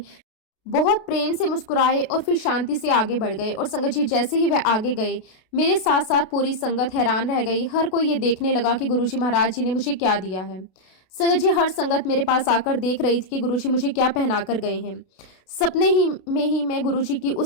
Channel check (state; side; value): late; right; 32 ms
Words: बहुत प्रेम से मुस्कुराए और फिर शांति से आगे बढ़ गए। और संगत जी, जैसे ही वह आगे गए, मेरे साथ साथ पूरी संगत हैरान रह गई। हर कोई ये देखने लगा कि गुरुजी महाराज जी ने मुझे क्या दिया है। संगत जी, हर संगत मेरे पास आकर देख रही थी कि गुरुजी मुझे क्या पहना कर गए हैं। सपने ही में ही मैं गुरुजी की